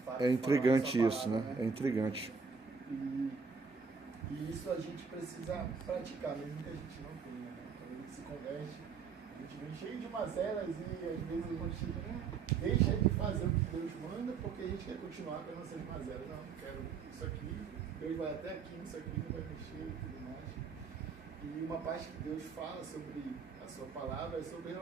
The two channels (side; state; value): left; quieter; 5.5 dB